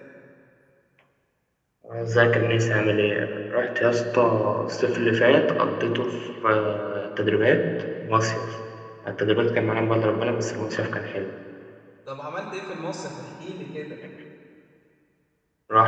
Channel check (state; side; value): identical; both; correlation 1.00